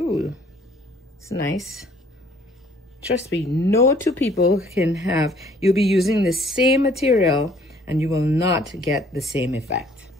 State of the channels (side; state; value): both; normal; correlation 0.59